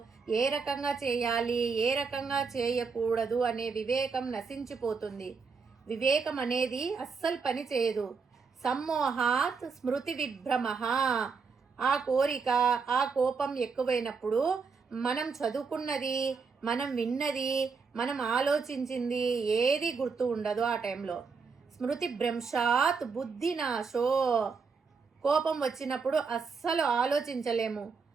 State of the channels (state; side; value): quieter; left; 5.1 dB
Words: ఏ రకంగా చేయాలి, ఏ రకంగా చేయకూడదు అనే వివేకం నశించిపోతుంది. వివేకం అనేది అస్సలు పని చేయదు. సమ్మోహాత్ స్మృతి విభ్రమ. ఆ కోరిక, ఆ కోపం ఎక్కువైనప్పుడు మనం చదువుకున్నది, మనం విన్నది, మనం ఆలోచించింది ఏది గుర్తు ఉండదు ఆ టైంలో. స్మృతి భ్రంశాత్ బుద్ధి నాశో. కోపం వచ్చినప్పుడు అస్సలు ఆలోచించలేము.